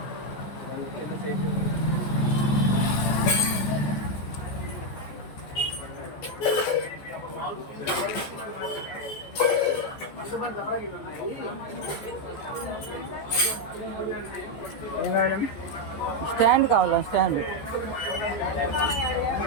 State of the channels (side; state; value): right; late; 14 ms